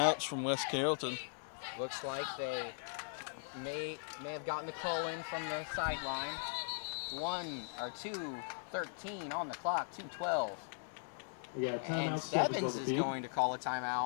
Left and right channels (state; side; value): silent; right; 52 dB below the other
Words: from West Carrollton. Looks like they may have gotten the call in from the sideline. 2:13 on the clock, 2:12. And Stebbins is going to call a